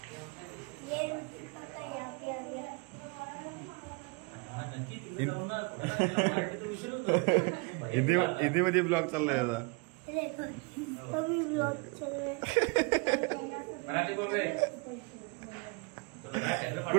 हिंदी मध्ये ब्लॉग चाललाय आता.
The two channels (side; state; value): left; quieter; 30.6 dB